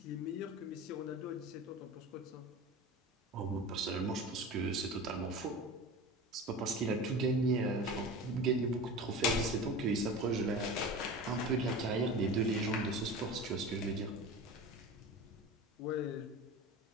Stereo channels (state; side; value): normal; both; correlation 0.33